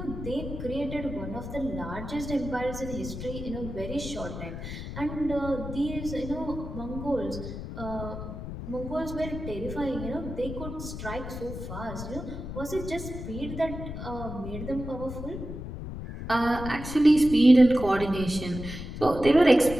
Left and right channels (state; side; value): noise; left; rumble, 8 dB below the sound